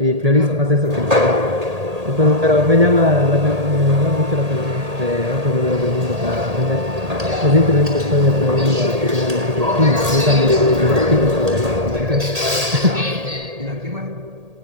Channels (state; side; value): late; left; 1.8 ms